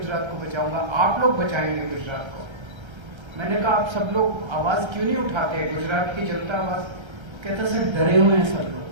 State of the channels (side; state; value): left; late; 1.3 ms